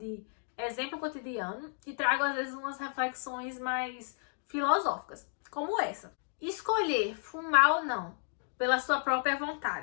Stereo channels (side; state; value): right; silent; digital silence